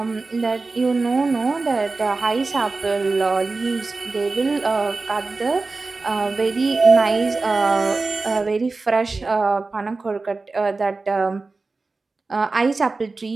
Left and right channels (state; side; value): quieter; left; 3.7 dB